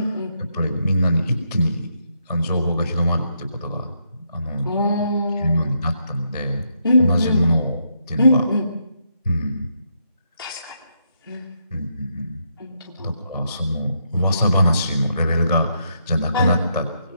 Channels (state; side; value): inverted; both; correlation -0.78